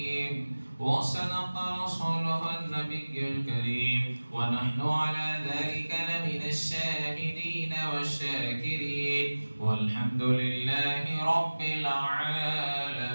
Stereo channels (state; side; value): inverted; both; correlation -1.00